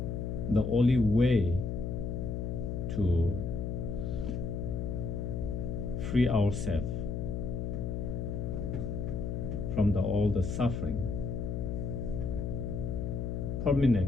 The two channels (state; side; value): noise; left; hum, 2 dB below the sound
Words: The only way to free ourselves from all the suffering